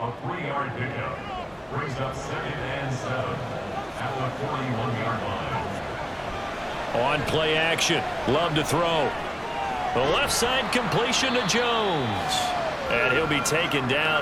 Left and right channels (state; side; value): identical; both; correlation 1.00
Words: 3-yard pickup brings up 2nd and 7 at the 41-yard line. On play action, Love to throw. The left side completion to Jones. And he'll be taken